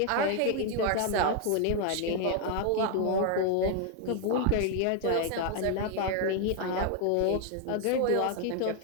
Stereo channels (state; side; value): different; both; correlation 0.01